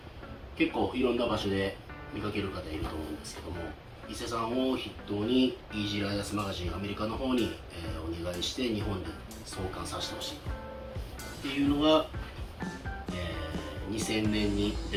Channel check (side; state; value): both; identical; correlation 1.00